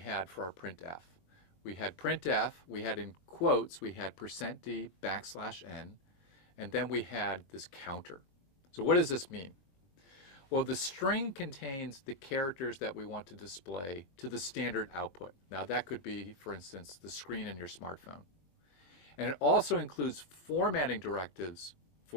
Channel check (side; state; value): right; late; 20 ms